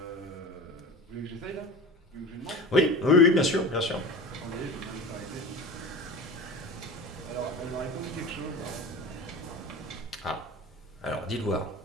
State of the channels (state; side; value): normal; both; correlation 0.34